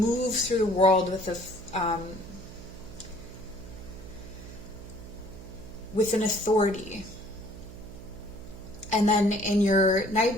through the world with an authority, and then in your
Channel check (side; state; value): right; noise; hum, 14 dB below the sound